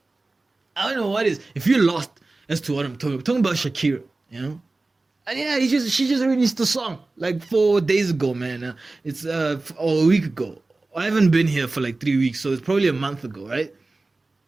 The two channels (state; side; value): quieter; left; 3.3 dB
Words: If you're lost as to what I'm talking about Shakira, you know? And yeah, she just released a song like 4 days ago, man. It's or a week ago. I haven't been here for like 3 weeks, so it's probably a month ago, right?